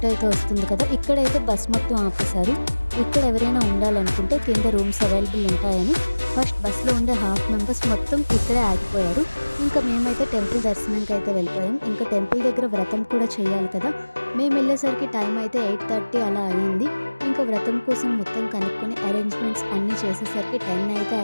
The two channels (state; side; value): inverted; both; correlation -1.00